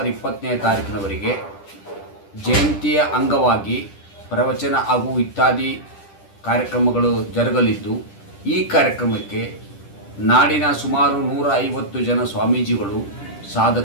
20ನೇ ತಾರೀಕಿನವರೆಗೆ ಜಯಂತಿಯ ಅಂಗವಾಗಿ ಪ್ರವಚನ ಹಾಗೂ ಇತ್ಯಾದಿ ಕಾರ್ಯಕ್ರಮಗಳು ಜರುಗಲಿದ್ದು, ಈ ಕಾರ್ಯಕ್ರಮಕ್ಕೆ ನಾಡಿನ ಸುಮಾರು 150 ಜನ ಸ್ವಾಮೀಜಿಗಳು,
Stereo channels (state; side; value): late; right; 10 ms